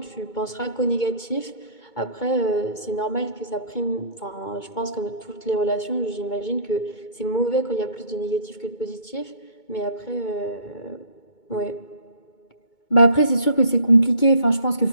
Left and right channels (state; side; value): late; right; 2.2 ms